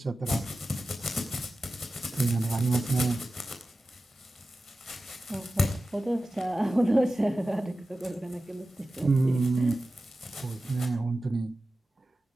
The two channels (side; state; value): both; normal; correlation 0.94